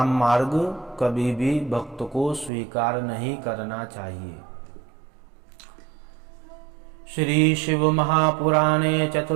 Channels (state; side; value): drops out; left; at 2.5 s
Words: मार्ग कभी भी भक्त को स्वीकार नहीं करना चाहिए। श्री शिव महापुराणे